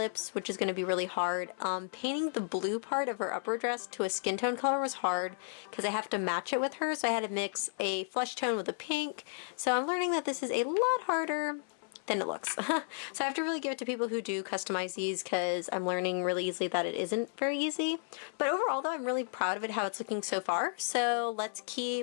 which is going to be really hard. Painting the blue part of her upper dress to a skin tone color was hard because I have to match it with her, so I had to mix a flesh tone with a pink, so I'm learning that this is a lot harder than it looks. So I have to really give it to people who do customize these because I'm learning really easily that it isn't very easy. But overall though, I'm really proud of it, how it's looking so far. So let's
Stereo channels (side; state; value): right; silent; 56 dB below the other